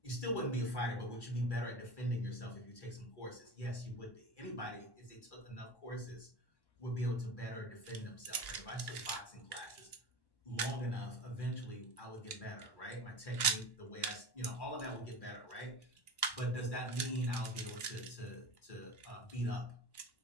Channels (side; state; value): right; late; 1.1 ms